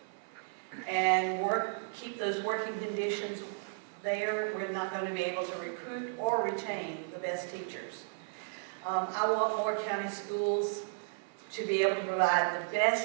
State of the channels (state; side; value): silent; left; 55 dB below the other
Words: and keep those working conditions there, we're not going to be able to recruit or retain the best teachers. I want Moore County schools to be able to provide the